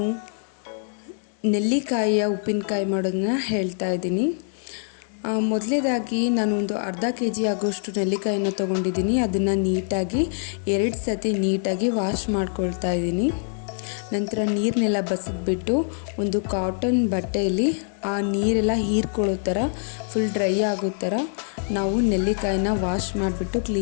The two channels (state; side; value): silent; right; digital silence